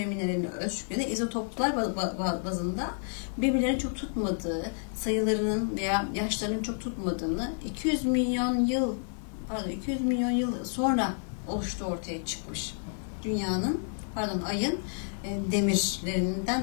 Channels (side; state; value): right; silent; 58 dB below the other